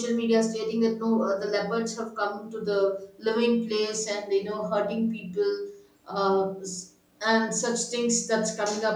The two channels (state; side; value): identical; both; correlation 1.00